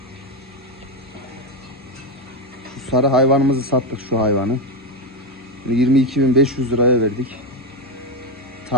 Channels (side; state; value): both; normal; correlation 0.10